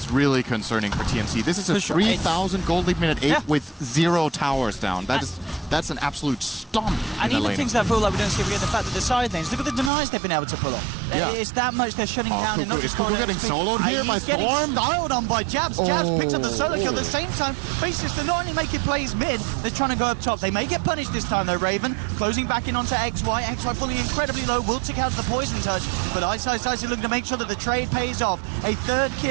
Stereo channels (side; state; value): left; drops out; at 9.9 s